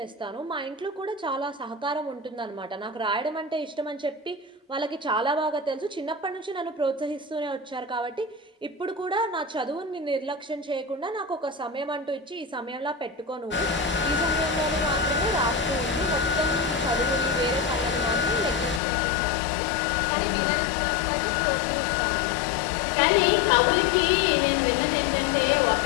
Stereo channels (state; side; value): drops out; right; at 18.8 s